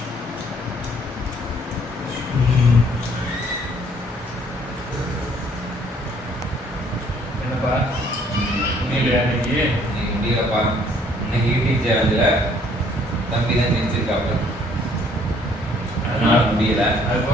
என்னப்பா முடியலையா இன்னைக்கு? இன்னைக்கு முடியலப்பா. இன்னைக்கு யூடியூப் சேனலில் தம்பி தான் ஜெயிச்சிருக்காப்புல, அதனால முடியல.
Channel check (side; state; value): both; normal; correlation 0.62